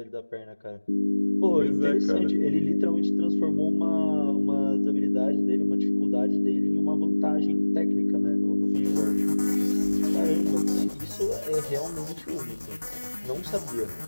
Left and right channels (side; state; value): both; inverted; correlation -1.00